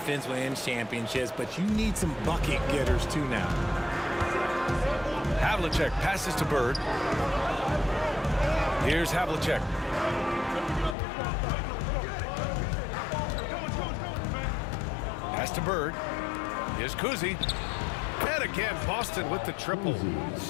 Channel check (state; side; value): drops out; right; at 11.0 s